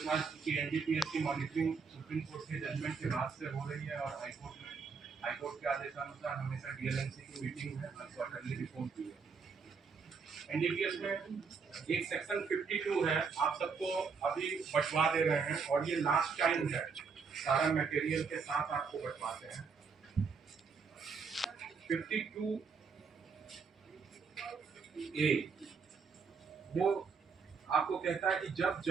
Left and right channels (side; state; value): left; quieter; 5.4 dB